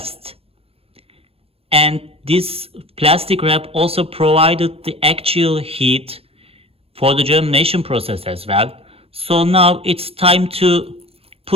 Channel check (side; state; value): left; late; 0.28 ms